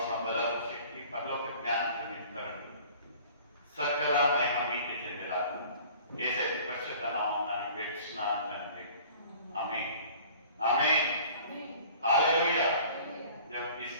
బలపు శక్తి పరలోక జ్ఞానంతో నింపుతారండి. సకల మహిమ మీకు చెందేలాగా యేసు పరిశుద్ధ నామమున వేడుచున్నాను తండ్రి. ఆమేన్ ఆమేన్ హల్లెలూయా. దేవునికి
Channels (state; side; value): inverted; both; correlation -0.48